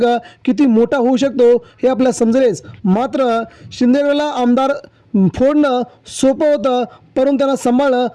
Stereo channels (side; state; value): both; identical; correlation 1.00